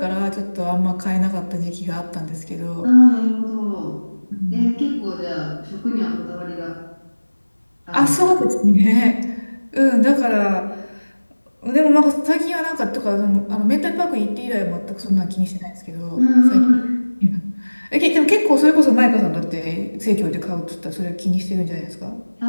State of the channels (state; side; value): inverted; both; correlation -1.00